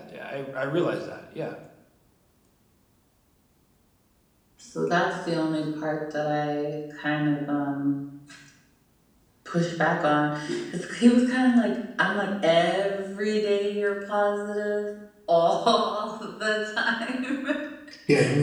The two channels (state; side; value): identical; both; correlation 1.00